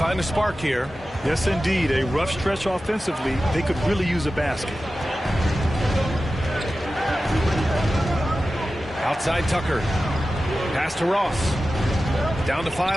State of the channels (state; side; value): normal; both; correlation 0.94